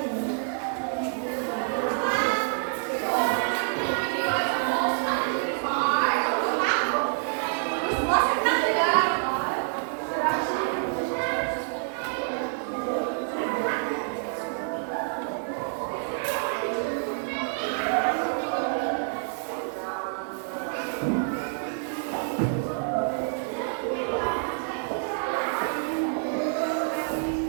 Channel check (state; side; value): silent; left; 60 dB below the other